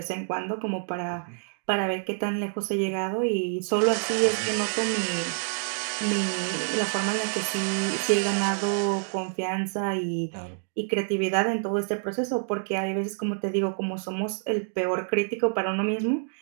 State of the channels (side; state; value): left; silent; digital silence